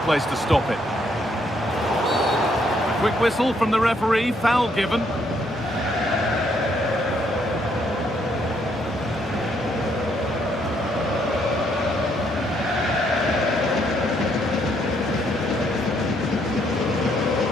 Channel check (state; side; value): normal; both; correlation 0.71